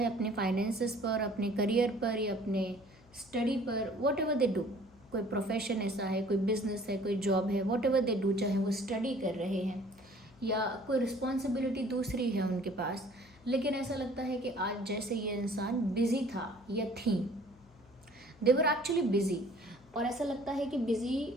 अपने फाइनेंसेस पर, अपने करियर पर, या अपने स्टडी पर, वॉट एवर दे डू। कोई प्रोफेशन ऐसा है, कोई बिजनेस है, कोई जॉब है, वॉट एवर दे डू, चाहे वो स्टडी कर रहे हैं या कोई रिस्पॉन्सिबिलिटी दूसरी है उनके पास, लेकिन ऐसा लगता है कि आज जैसे ये इंसान बिजी था या थी, दे वर एक्चुअली बिजी। और ऐसा लगता है कि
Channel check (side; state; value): left; noise; hum, 27 dB below the sound